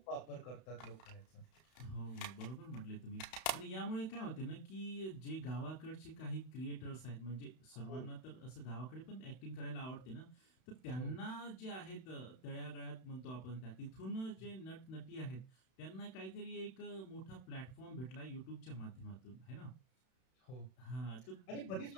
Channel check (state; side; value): late; right; 32 ms